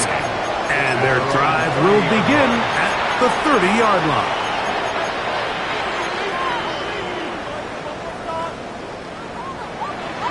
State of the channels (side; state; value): both; identical; correlation 1.00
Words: guy. And their drive will begin at the 30-yard line.